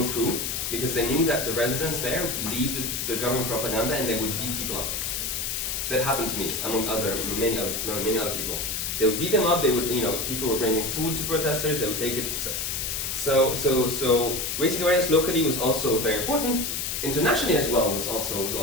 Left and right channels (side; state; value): left; noise; hiss, 2 dB below the sound